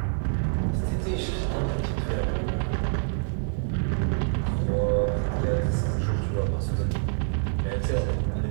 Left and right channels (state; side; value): silent; left; 61 dB below the other